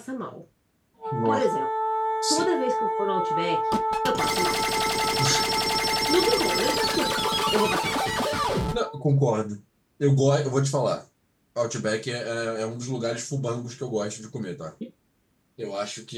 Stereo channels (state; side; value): identical; both; correlation 1.00